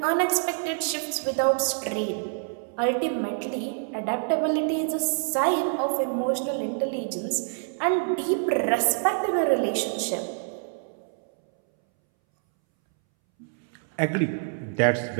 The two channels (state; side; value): silent; left; 61 dB below the other